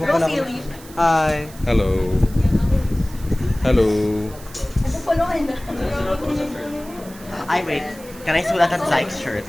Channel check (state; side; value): noise; right; hiss, 20 dB below the sound